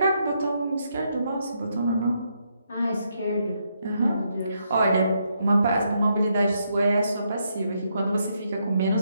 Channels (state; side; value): inverted; both; correlation -0.78